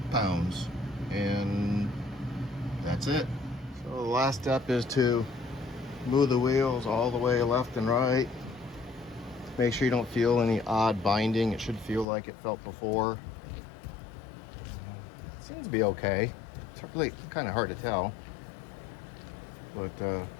and that's it. So the last step is to move the wheels all the way left and right. Make sure you don't feel any odd binding. It should feel like it felt before. It seems to be okay. It's really kind of hard to tell, but I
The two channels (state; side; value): drops out; right; at 12.1 s